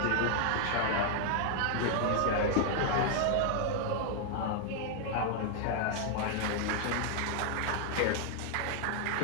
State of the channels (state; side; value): different; both; correlation 0.00